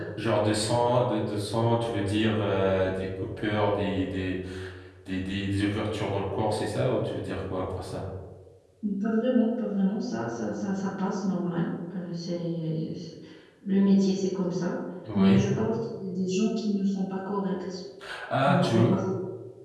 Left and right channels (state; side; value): identical; both; correlation 1.00